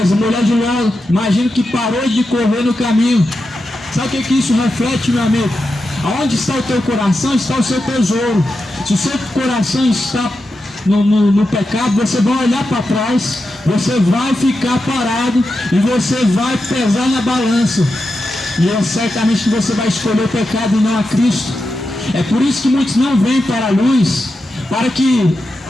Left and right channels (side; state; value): both; normal; correlation 0.89